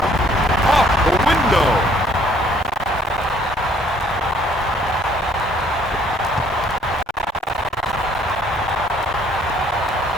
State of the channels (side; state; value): both; normal; correlation 0.61